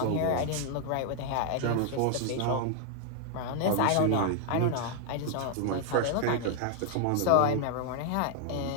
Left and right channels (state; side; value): different; both; correlation 0.00